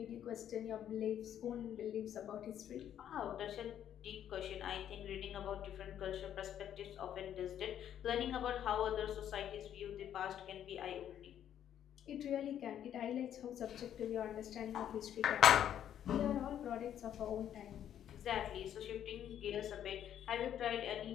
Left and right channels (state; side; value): quieter; right; 10.2 dB